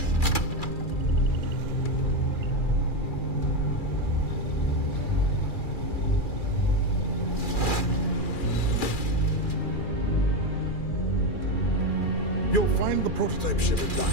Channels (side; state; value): right; late; 2.4 ms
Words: You'll find the prototype ship at